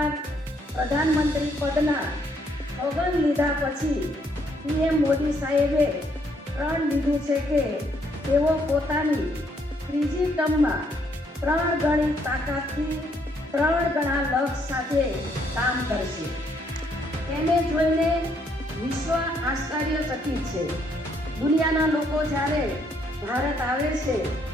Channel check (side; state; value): both; normal; correlation 0.70